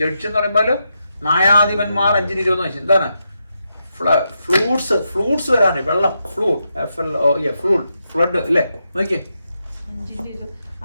ജഡ്ജ് എന്ന് പറയുമ്പോൾ ന്യായാധിപന്മാർ 5:20 നോക്കി. എന്താണ്? ഫ്ലൂട്ട്സ് വരാണ്. വെള്ളം, ഫ്ലഡ് അല്ലേ? നോക്കിയേ.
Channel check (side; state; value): both; inverted; correlation -0.84